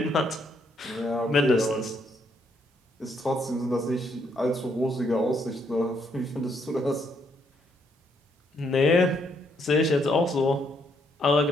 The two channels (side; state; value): both; normal; correlation 0.73